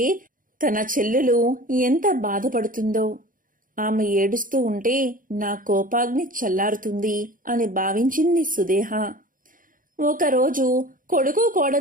తన చెల్లెలు ఎంత బాధపడుతుందో. ఆమె ఏడుస్తూ ఉంటే నా కోపాగ్ని చల్లారుతుంది అని భావించింది సుదేహ. ఒకరోజు కొడుకు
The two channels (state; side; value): late; left; 0.40 ms